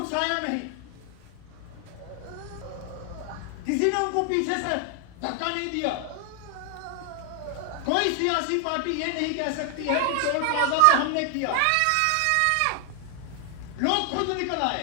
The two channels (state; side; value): different; both; correlation 0.00